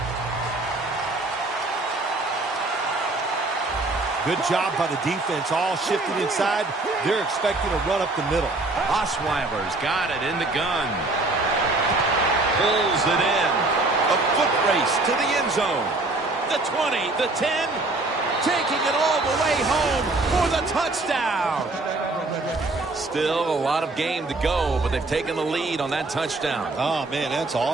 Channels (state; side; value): quieter; left; 3.1 dB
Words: Good job by the defense, all shifting inside. They're expecting a run up the middle. Osweiler's got it in the gun. Pulls it in. A foot race to the end zone. The 20, the 10, taking it all the way home for the touchdown. Still a lot of game to go, but they've taken the lead on that touchdown. Oh, man, that's